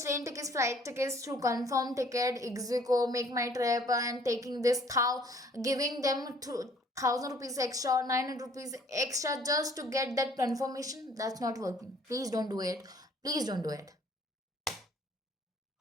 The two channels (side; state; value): both; normal; correlation 0.58